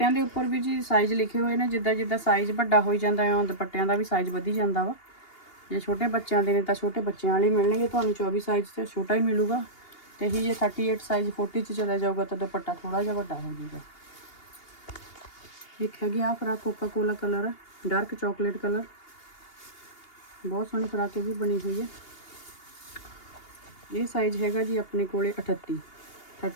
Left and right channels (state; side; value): late; right; 2.8 ms